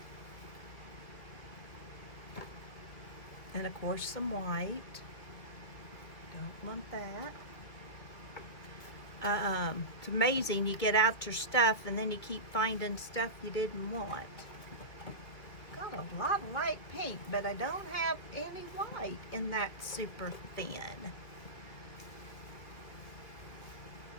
And of course some white. Don't want that. It's amazing, you get out your stuff and then you keep finding stuff you didn't want. Got a lot of light pink, but I don't have any white in that super thin.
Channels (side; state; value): right; late; 2.3 ms